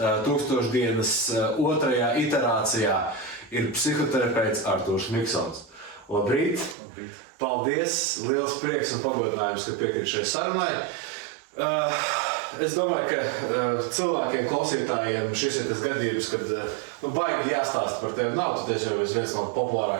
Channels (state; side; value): drops out; left; at 6.8 s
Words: 1000 dienas otrajā iterācijā ir psihoterapeits Artūrs Miksons. Labrīt! Labrīt! Paldies! Liels prieks un pagodinājums, ka piekrīt šai sarunai. Es domāju, ka cilvēkiem, klausītājiem šis ir tas gadījums, kad baigi jāstāsta par tevi. Nav tu tiešām viens no